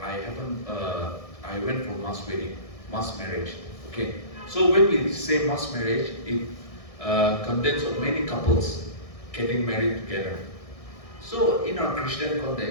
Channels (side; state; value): right; late; 1.6 ms